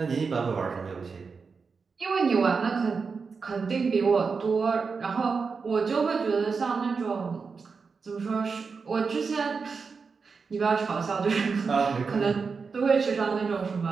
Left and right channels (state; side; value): quieter; left; 5.1 dB